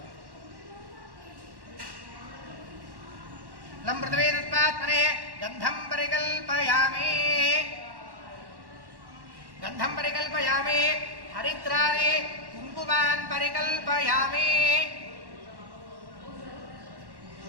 लं पृथिवी तत्त्वात्मने गन्धं परिकल्पयामि हरिद्राणि कुङ्कुमान् परिकल्पयामि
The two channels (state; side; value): late; left; 1.1 ms